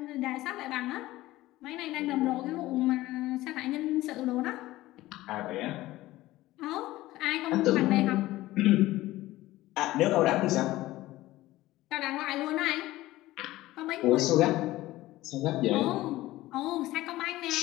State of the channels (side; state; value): right; quieter; 17.0 dB